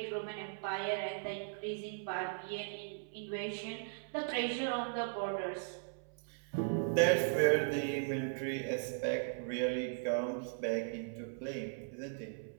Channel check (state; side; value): silent; left; 53 dB below the other